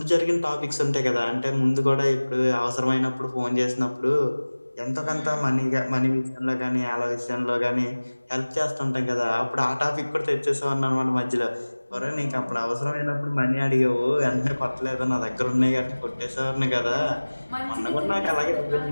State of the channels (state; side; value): inverted; both; correlation -1.00